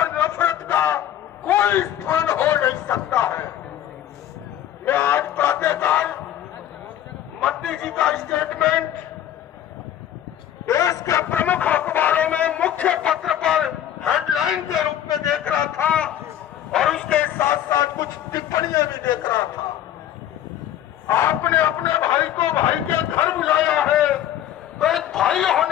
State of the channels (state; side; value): quieter; right; 11.4 dB